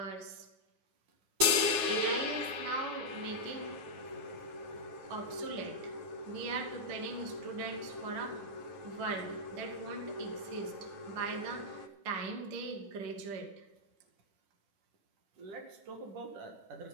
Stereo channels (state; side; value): late; left; 9.6 ms